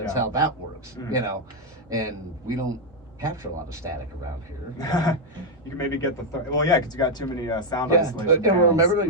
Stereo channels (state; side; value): normal; both; correlation 0.01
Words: how that works, and we don't capture a lot of static around here. You can maybe get because you got too many sound isolation. And remember,